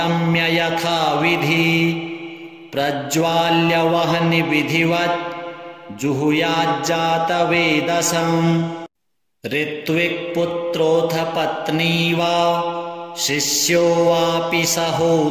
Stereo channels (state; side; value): identical; both; correlation 1.00